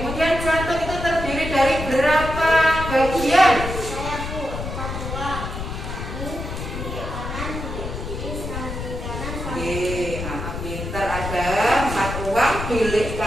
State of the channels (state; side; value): noise; left; rumble, 6 dB below the sound